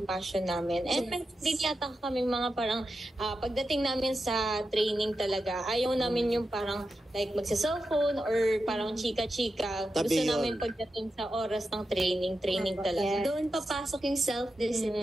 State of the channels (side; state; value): both; normal; correlation 0.90